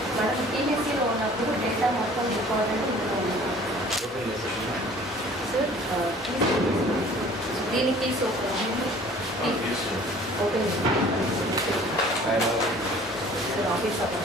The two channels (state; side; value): normal; both; correlation 0.50